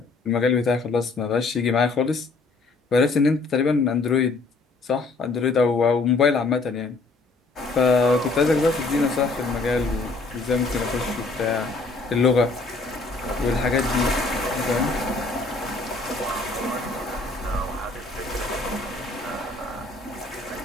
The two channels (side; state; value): right; quieter; 3.6 dB